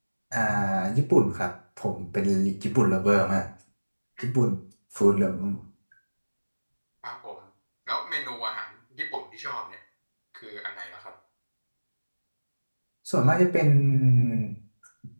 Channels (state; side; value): inverted; both; correlation -1.00